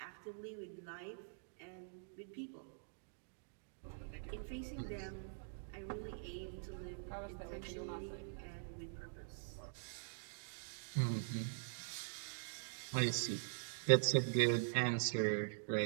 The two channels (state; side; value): silent; left; digital silence